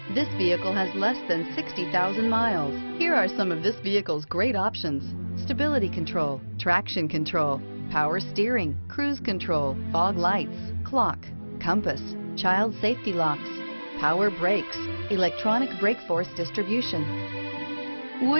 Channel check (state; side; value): inverted; both; correlation -1.00